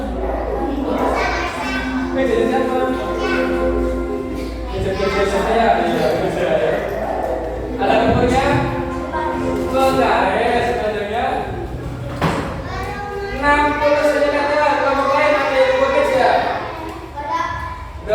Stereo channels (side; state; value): both; identical; correlation 1.00